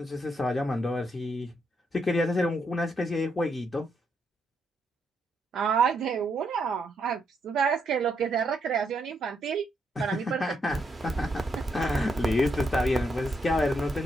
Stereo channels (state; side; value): normal; both; correlation 0.77